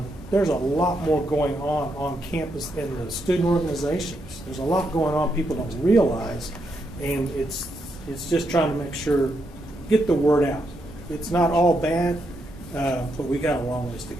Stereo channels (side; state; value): both; normal; correlation 0.80